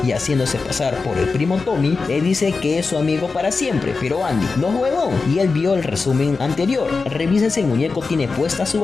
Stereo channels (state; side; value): quieter; right; 4.3 dB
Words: y haciéndose pasar por el primo Tommy, le dice que es su amigo para siempre. Pero Andy no es huevón y él vio el resumen anterior. Revisa si el muñeco tiene puesta su